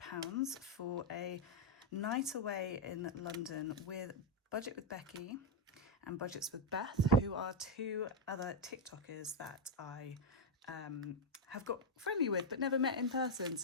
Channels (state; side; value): normal; both; correlation 0.02